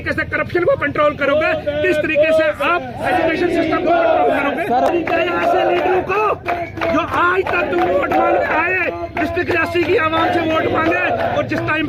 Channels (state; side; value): identical; both; correlation 1.00